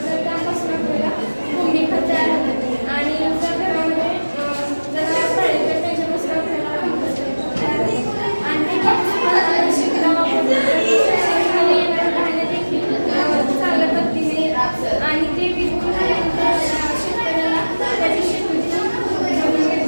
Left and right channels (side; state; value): both; inverted; correlation -1.00